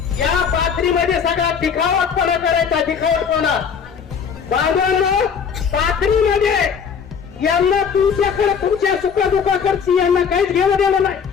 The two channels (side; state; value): right; quieter; 6.7 dB